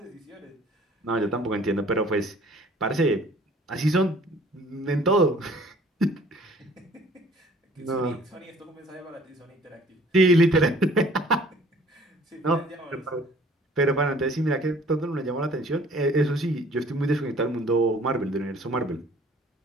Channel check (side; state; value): both; normal; correlation 0.53